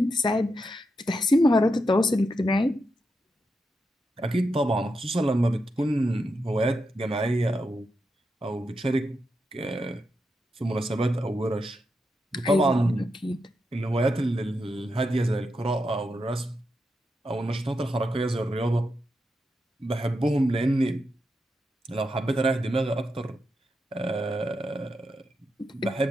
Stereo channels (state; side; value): normal; both; correlation 0.85